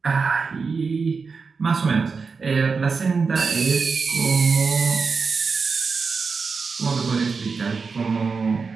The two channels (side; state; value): left; quieter; 4.9 dB